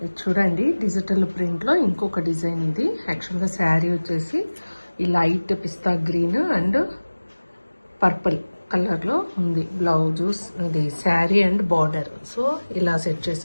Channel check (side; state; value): both; inverted; correlation -1.00